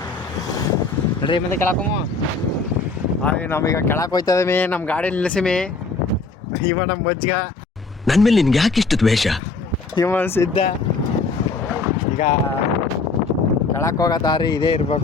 ನಡ್ರಿ ಮುಂದೆ ಕೆಳಕಮ್ಮ. ಹಾಗೆ ನಾವೀಗ ಕೆಳಕ್ಕೆ ಹೋಯ್ತಾ ಇದೀವಿ. ನಮ್ಮ ಗಾಡಿ ನಿಲ್ಲಿಸಿಮಿ. ಇವ ನಮ್ಮ ಮಜ್ಜಿಗ ನನ್ನ ಮೇಲೆ ನಿನ್ಗೆ ಯಾಕೆ ಇಷ್ಟು ದ್ವೇಷ? ಇವ ಸಿದ್ಧ. ಈಗ ಕೆಳಕ್ಕೆ ಹೋಗೋ ದಾರಿ ಇದೇ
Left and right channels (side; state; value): right; quieter; 4.0 dB